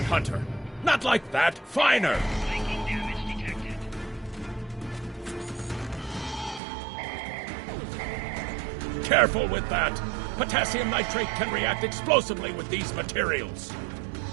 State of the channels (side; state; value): left; drops out; at 6.6 s